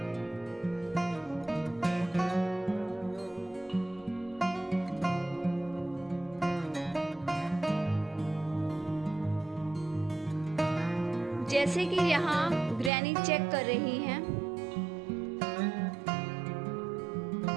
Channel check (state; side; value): drops out; left; at 12.9 s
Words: जैसे कि यहाँ ग्रैनी चेक कर रही हैं,